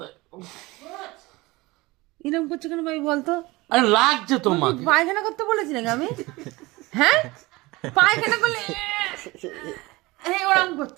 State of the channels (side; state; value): left; quieter; 21.8 dB